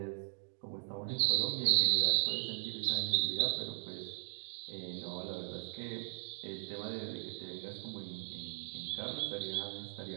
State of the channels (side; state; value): left; silent; digital silence